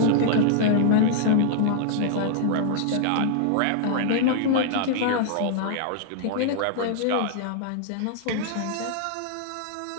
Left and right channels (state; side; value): different; both; correlation -0.01